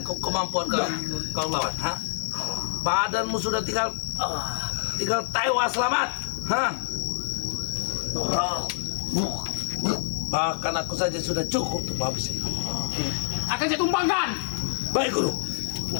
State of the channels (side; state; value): right; silent; 59 dB below the other